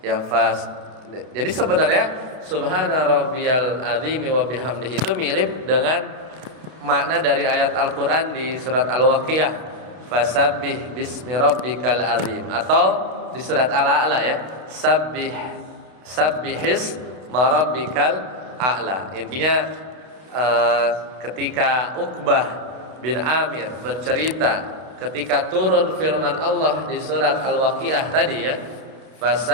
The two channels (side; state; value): left; late; 32 ms